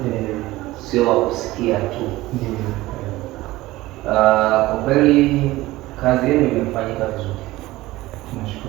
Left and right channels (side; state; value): left; quieter; 18.2 dB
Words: sio wa kusikia tu. Ndio. Kwa kweli kazi yenu imefanyika vizuri.